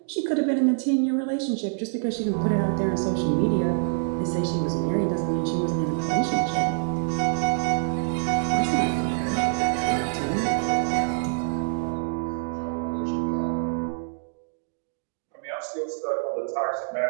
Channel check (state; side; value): silent; left; digital silence